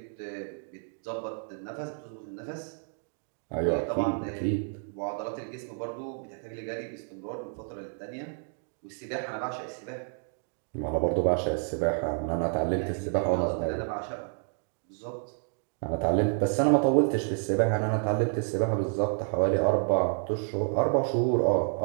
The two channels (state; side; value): silent; left; 58 dB below the other